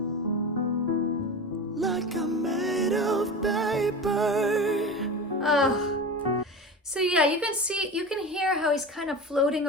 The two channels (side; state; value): both; normal; correlation 0.28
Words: like I'm made of paper. So yeah, you can hear how he's kind of floating